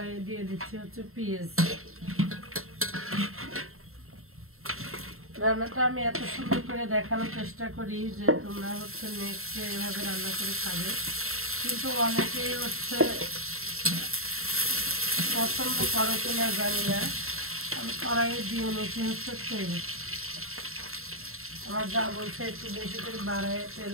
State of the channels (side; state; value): left; late; 0.62 ms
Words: দিয়ে দিচ্ছি হচ্ছে পেঁয়াজ। রান্নাটা আমি এত সুন্দর করে দেখানোর চেষ্টা করি যে তোমরা হচ্ছে নেক্সট এভাবে রান্না করে খাবে, কিন্তু অনেকেই হচ্ছে পছন্দ করো কিনা জানি না। আমি কড়াইয়ে দিয়ে নিচ্ছি হচ্ছে তেল। আমার যা বলছে একটু বেশি করে বাড়ায় তেল